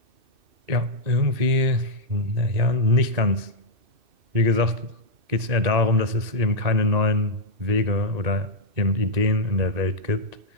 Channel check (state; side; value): late; left; 2.6 ms